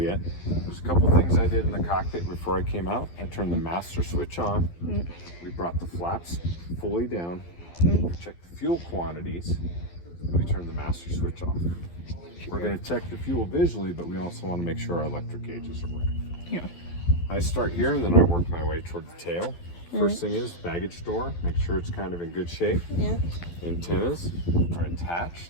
There's a couple things I did in the cockpit before I came out. I turned the master switch on. We brought the flaps fully down. Checked the fuel quantities. And we turned the master switch off. We're going to check the fuel visually, but we also want to make sure our electric gauges are working. Yeah. I start here and then I work my way toward the tail. First thing is baggage door. Make sure it's kind of in good shape. Yeah. Antennas are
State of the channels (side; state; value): right; late; 12 ms